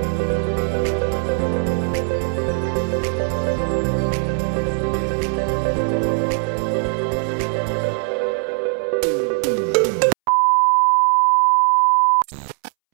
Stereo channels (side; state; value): left; silent; 66 dB below the other